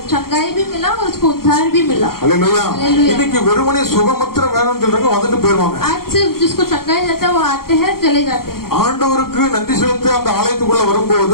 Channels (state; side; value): late; right; 0.93 ms